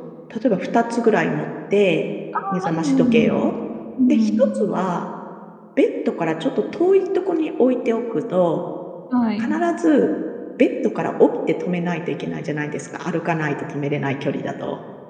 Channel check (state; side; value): identical; both; correlation 1.00